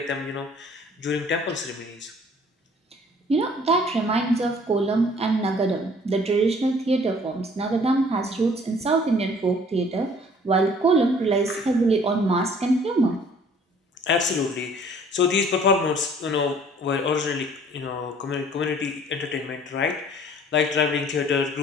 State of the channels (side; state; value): both; normal; correlation 0.55